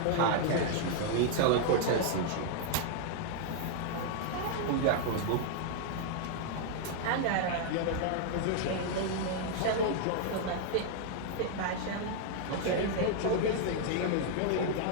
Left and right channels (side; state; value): both; different; correlation 0.00